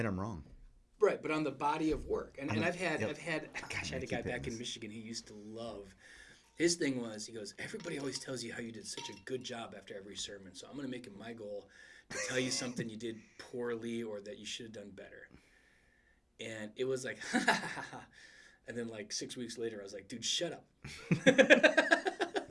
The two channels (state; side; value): identical; both; correlation 1.00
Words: I'm wrong. Right, but on the body of work. And I've had, gosh, I had a guy keep back in this. Michigan he used to love. His thing was, he goes, everybody always tells you how you did such a good job after every sermon. So I'm going to make it my goal to tell you something you did poorly or that you should have done better. And it was like, ha, ha, ha, ha. And then 6 weeks later, I was like, dude, shut up.